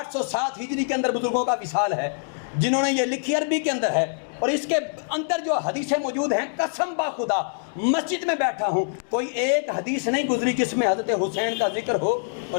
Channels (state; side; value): silent; right; digital silence